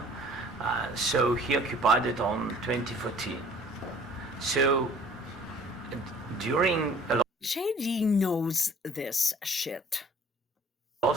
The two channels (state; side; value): normal; both; correlation 0.52